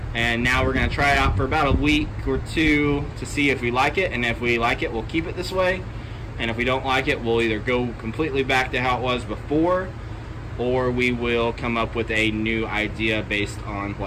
And now we're going to try it out for about a week or two to see if we like it. And if we like it, we'll keep it this way. And if we don't like it, we'll either go completely back to how it was before, or we will come up with a new idea based on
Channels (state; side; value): identical; both; correlation 1.00